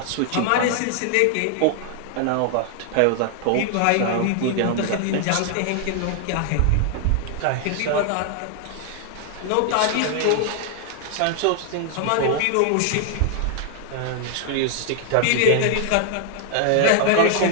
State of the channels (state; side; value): different; both; correlation 0.00